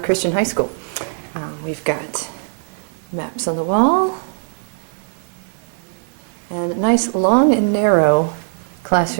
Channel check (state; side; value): silent; left; digital silence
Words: High School. We've got maps on the wall and a nice long and narrow